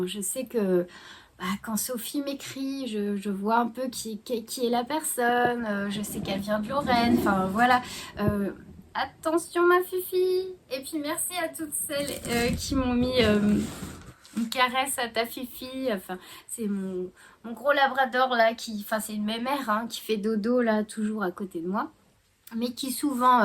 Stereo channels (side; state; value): both; identical; correlation 1.00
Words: je sais que quand Sophie m'écrit, je vois un peu qui est la personne. Je sais qu'elle vient de Lorraine. Enfin, voilà. Attention ma Fifi. Et puis merci à toutes celles qui m'ont mis une caresse à ta Fifi. Enfin, c'est mon gros labrador là enfin c'est une mémère hein, qui fait dodo là toujours à côté de moi, mais qui souvent